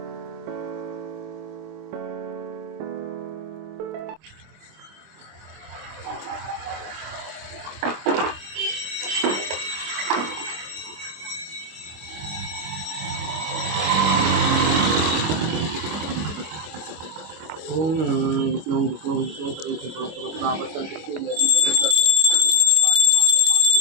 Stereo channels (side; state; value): left; late; 25 ms